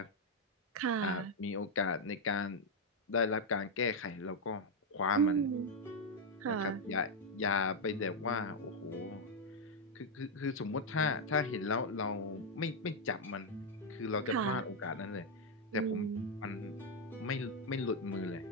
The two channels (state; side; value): normal; both; correlation 0.01